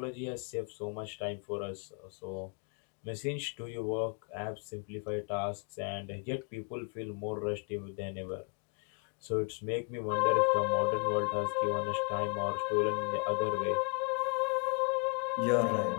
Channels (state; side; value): quieter; right; 34.6 dB